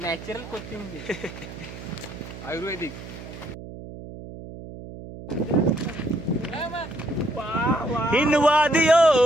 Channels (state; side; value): noise; right; hum, 13 dB below the sound